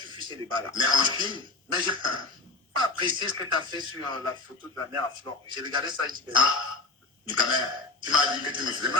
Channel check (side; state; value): right; quieter; 3.5 dB